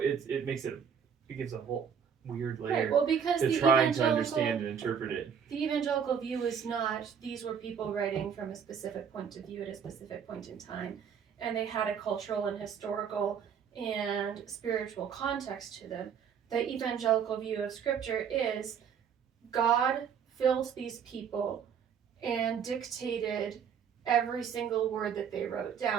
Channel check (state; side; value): quieter; left; 7.5 dB